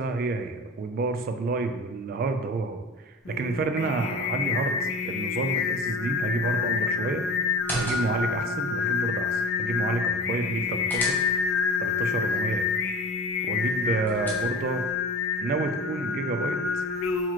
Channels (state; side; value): normal; both; correlation 0.36